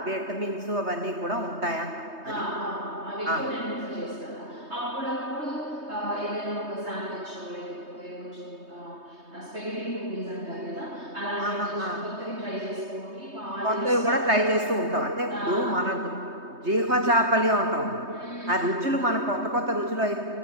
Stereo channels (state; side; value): late; left; 3.2 ms